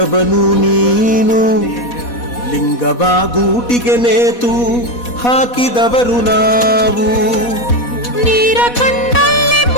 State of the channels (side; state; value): right; late; 4.1 ms